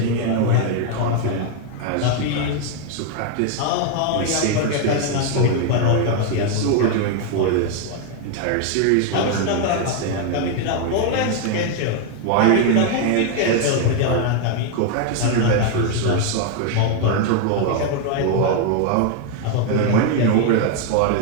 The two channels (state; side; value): different; both; correlation 0.01